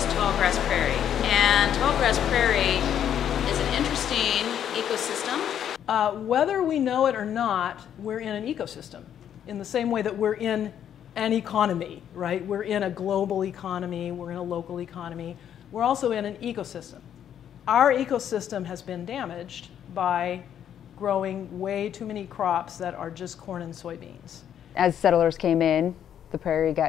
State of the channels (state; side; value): quieter; right; 9.6 dB